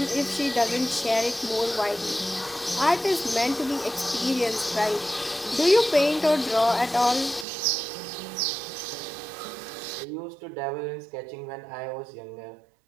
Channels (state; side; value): drops out; left; at 7.5 s